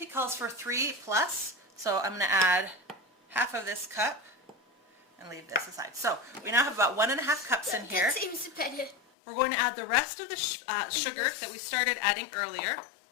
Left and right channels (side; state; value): right; drops out; at 9.0 s